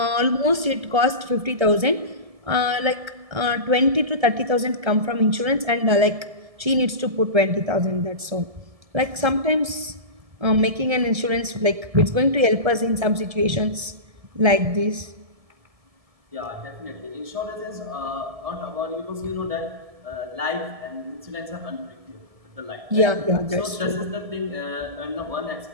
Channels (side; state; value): left; late; 1.7 ms